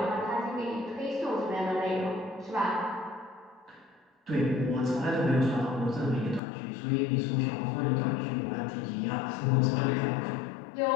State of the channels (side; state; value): right; drops out; at 6.4 s